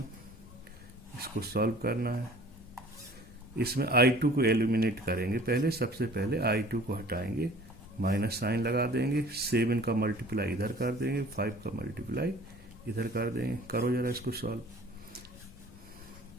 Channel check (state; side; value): noise; left; rumble, 20 dB below the sound